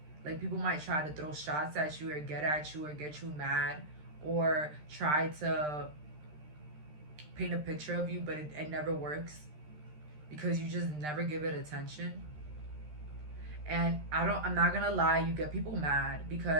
Like people might try to throw shots at you or get at you or get you mad or try to paint a picture of you, but it never works because you just never give it attention. And I'm not gonna lie, you get people mad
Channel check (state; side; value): late; left; 13 ms